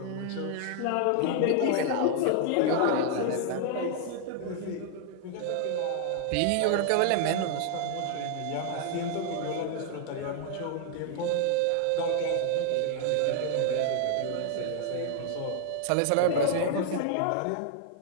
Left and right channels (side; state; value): both; different; correlation 0.00